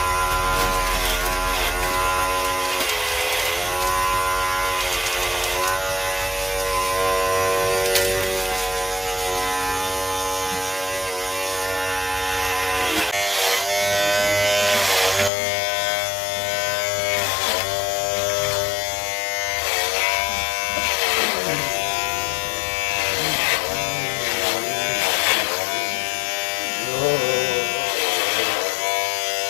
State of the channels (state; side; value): drops out; right; at 15.3 s